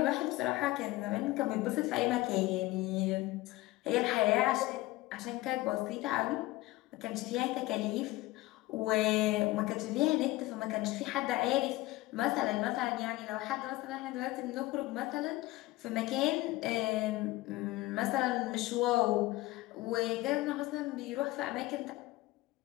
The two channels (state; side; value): quieter; right; 18.9 dB